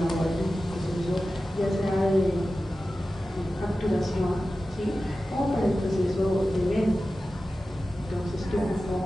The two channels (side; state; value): both; normal; correlation 0.94